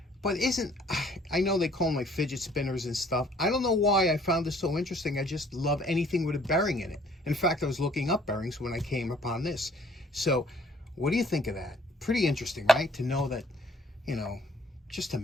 But I know they call them like fidget spinners and stuff. I don't know why I found this so interesting. I just love anything with a bearing in it. In fact, I was looking up bearings when I came upon this. So what do you think of that? Pretty interesting, right? To know that, you know, just to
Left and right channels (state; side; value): normal; both; correlation 0.59